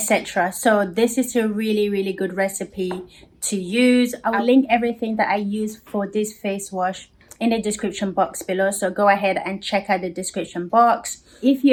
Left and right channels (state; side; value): identical; both; correlation 1.00